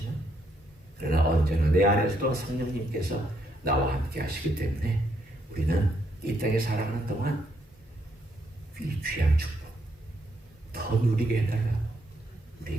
그러나 언제나 내 안에서도 성령님께서 나와 함께 하시기 때문에 우리는 이 땅에 살아가는 동안 이 귀한 축복, 더 누리게 해달라. 우리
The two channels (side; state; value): both; normal; correlation 0.74